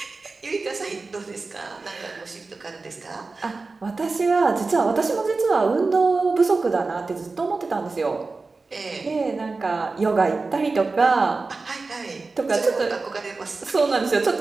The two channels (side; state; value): left; quieter; 3.8 dB